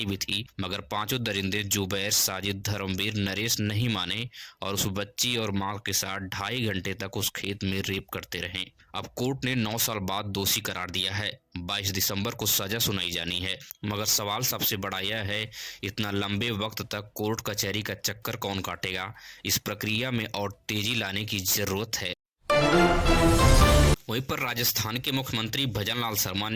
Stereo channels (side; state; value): both; identical; correlation 1.00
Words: भी थी, मगर पांचों दरिंदे जुबैर, साजिद, धर्मवीर, नरेश नहीं माने और उस बच्ची और मां के साथ 2.5 घंटे तक उस खेत में रेप करते रहे। अब कोर्ट ने 9 साल बाद दोषी करार दिया है। 22 दिसंबर को सजा सुनाई जानी है, मगर सवाल सबसे बड़ा यह है, इतना लंबे वक्त तक कोर्ट कचहरी का चक्कर कौन काटेगा? इस प्रक्रिया में और तेजी लाने की जरूरत है। वहीं पर राजस्थान के मुख्यमंत्री भजनलाल शर्मा